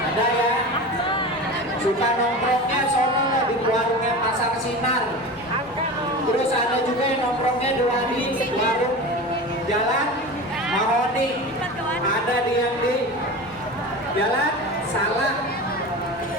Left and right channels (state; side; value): normal; both; correlation 0.30